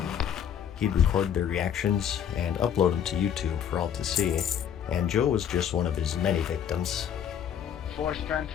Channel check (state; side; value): quieter; right; 8.8 dB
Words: He'd record their reactions and upload them to YouTube for all to see, and Joe was just one of his many victims. 4 strength